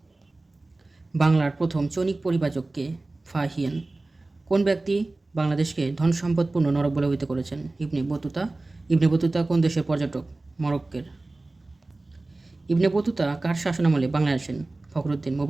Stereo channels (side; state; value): left; quieter; 3.1 dB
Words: বাংলার প্রথম চৈনিক পরিব্রাজককে? ফাহিয়েন। কোন ব্যক্তি বাংলাদেশকে ধন সম্পদপূর্ণ নরক বলে অভিহিত করেছেন? Ibn Battuta. ইবনে বতুতা কোন দেশের পর্যটক? মরক্কোর। ইবনে বতুতা কার শাসনামলে বাংলায় আসেন? ফখরুদ্দীন